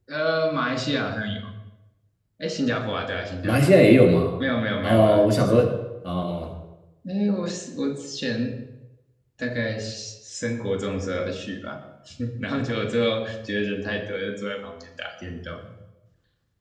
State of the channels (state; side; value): identical; both; correlation 1.00